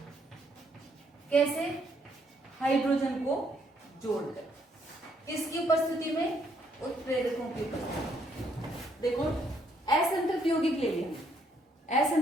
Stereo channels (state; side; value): normal; both; correlation 0.70